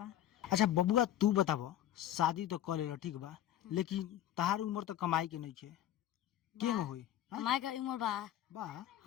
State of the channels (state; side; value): quieter; right; 11.9 dB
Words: अच्छा बबुआ तू बताव, शादी तो कर लेला ठीक बा, लेकिन तहार उम्र तो कमाई के नहीं छे, केंग होई? कमाई का उम्र बा। बा